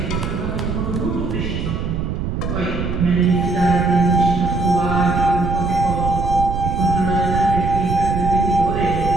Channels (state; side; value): noise; right; rumble, 3 dB below the sound